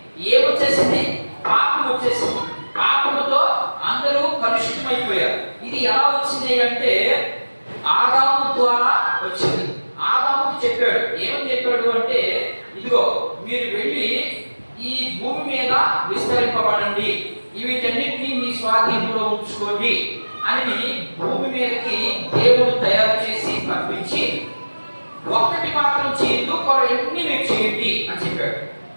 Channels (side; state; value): both; inverted; correlation -1.00